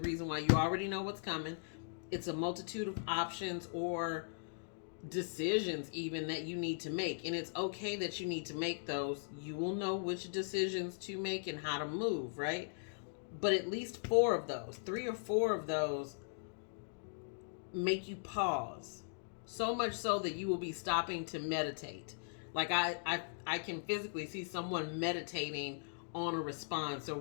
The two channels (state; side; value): silent; right; digital silence